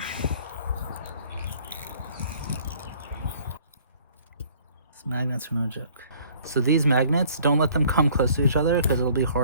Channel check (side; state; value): both; inverted; correlation -0.56